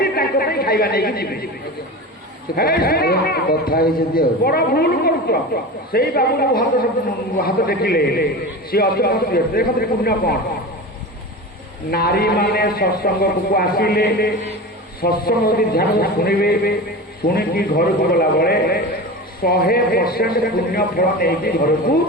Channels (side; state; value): both; normal; correlation 0.29